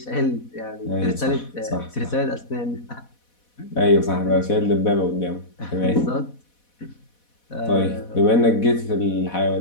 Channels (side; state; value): right; late; 4.1 ms